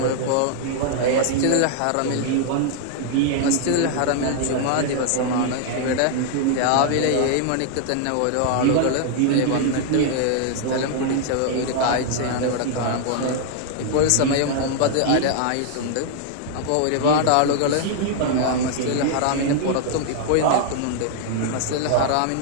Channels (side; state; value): both; different; correlation 0.00